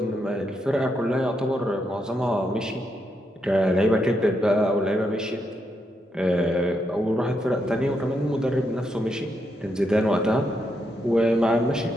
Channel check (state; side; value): normal; both; correlation 0.80